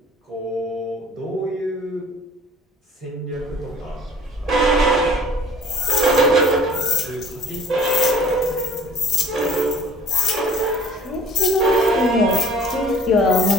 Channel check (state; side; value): normal; both; correlation 0.51